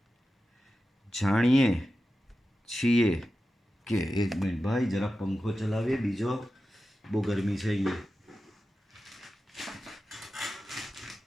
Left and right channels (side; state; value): both; normal; correlation 0.92